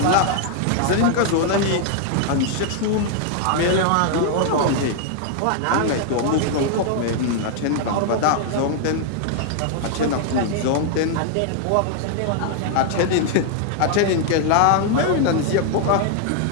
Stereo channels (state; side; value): different; both; correlation 0.00